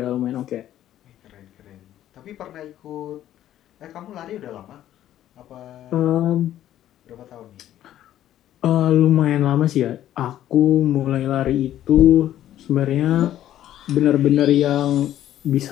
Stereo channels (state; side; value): quieter; right; 12.2 dB